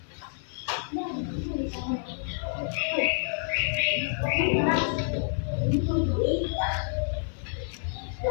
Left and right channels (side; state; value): right; silent; 59 dB below the other